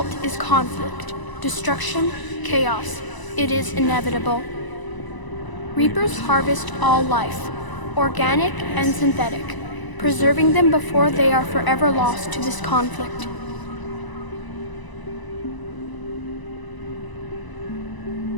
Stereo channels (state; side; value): late; right; 1.0 ms